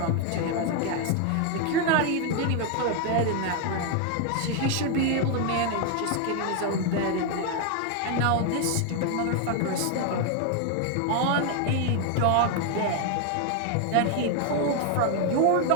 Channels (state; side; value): different; both; correlation 0.00